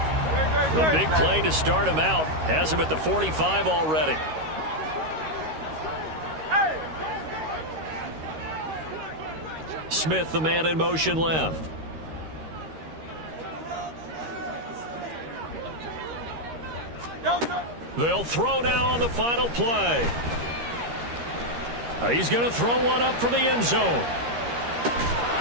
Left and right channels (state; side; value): late; left; 13 ms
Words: The big play to start him out has him at the 45 already. Smith, the man in motion left. They'll throw now on the final play. He's going to throw one up for the end zone.